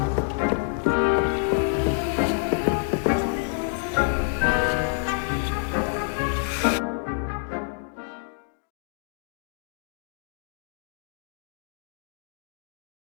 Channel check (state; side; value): silent; right; digital silence